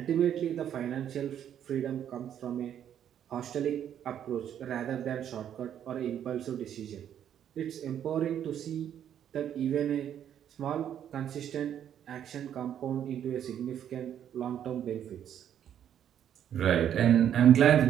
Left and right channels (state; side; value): quieter; left; 9.8 dB